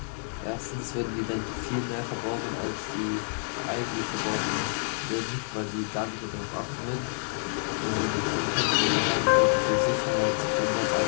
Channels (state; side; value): silent; right; digital silence